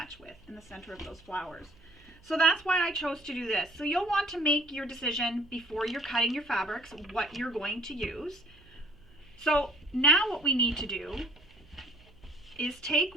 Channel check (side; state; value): right; noise; hum, 27 dB below the sound